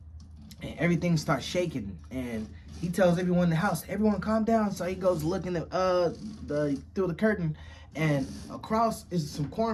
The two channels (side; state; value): both; identical; correlation 1.00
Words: And everything starts shaking, and he tells everyone in the house, everyone calm down. So he goes looking at through the curtain, and across is some